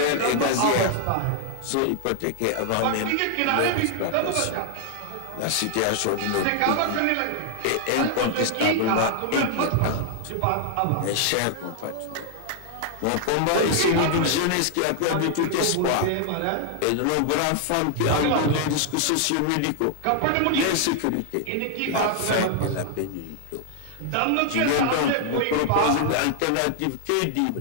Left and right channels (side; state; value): both; different; correlation 0.00